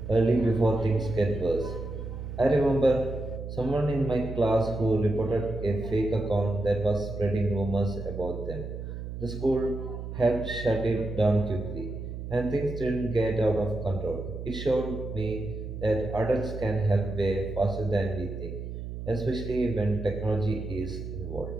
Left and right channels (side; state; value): right; noise; hum, 8 dB below the sound